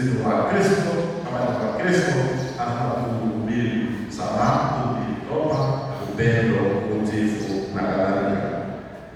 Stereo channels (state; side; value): identical; both; correlation 1.00